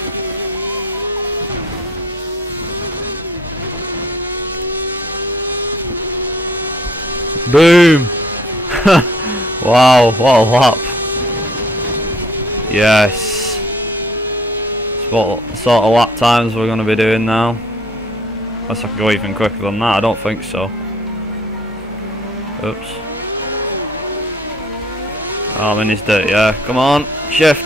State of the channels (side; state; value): both; normal; correlation 0.58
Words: Boom! Wow, what a lap. Yes. What sort of lap times we're going to be doing now. Unless I can go even quicker than that, I don't think so. Oops. Oh, I'm in his dirt, yeah. Come on,